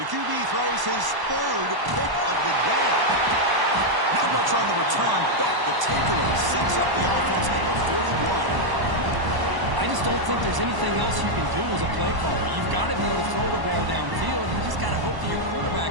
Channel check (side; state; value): left; late; 1.0 ms